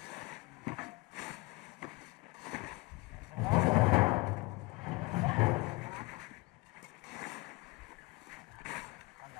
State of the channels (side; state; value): right; quieter; 24.3 dB